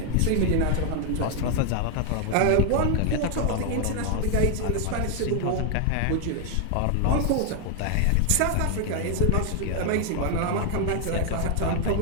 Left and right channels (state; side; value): different; both; correlation 0.00